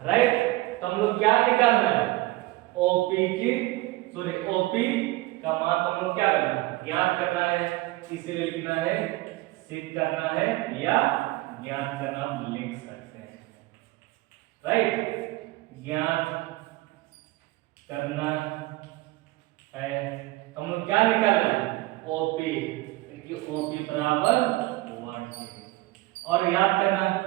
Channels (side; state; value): left; quieter; 19.7 dB